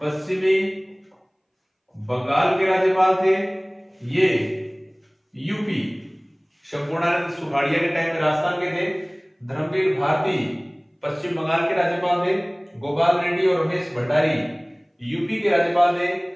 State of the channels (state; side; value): identical; both; correlation 1.00